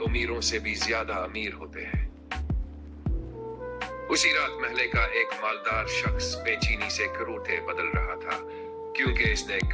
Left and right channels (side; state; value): both; identical; correlation 1.00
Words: سے بھی زیادہ امیر ہوتے ہیں۔ اسی رات محلے کا ایک مالدار شخص بے چینی سے کروٹے بدل رہا تھا، کیونکہ اس نے